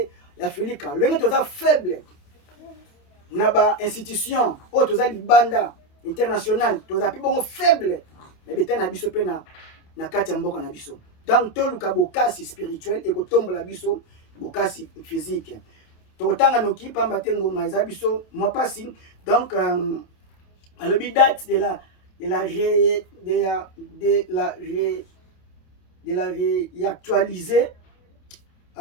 ya Filika lenge toza faible na ba institution o toza libanda international toza pi bongo faible na beta na biso pe na kati ya mboka na biso. Donc toluka bokasi spirituel et kotombola biso bokasi physique. Totanga noki pamba te ngoma eza biso mo pasi. Donc le date de la réactualiser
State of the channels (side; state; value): right; late; 28 ms